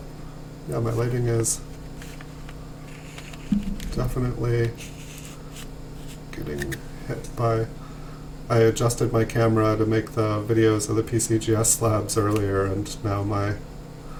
yeah, my lighting is definitely getting hit by, I adjusted my camera to make the videos of the PCGS slabs earlier, and now my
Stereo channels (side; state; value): both; identical; correlation 1.00